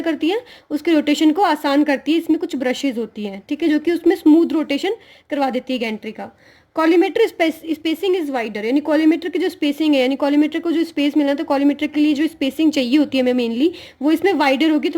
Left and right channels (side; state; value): both; identical; correlation 1.00